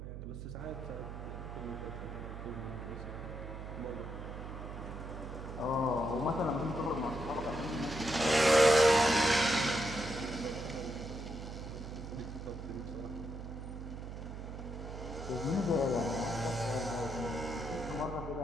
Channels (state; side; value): noise; right; hum, 9 dB below the sound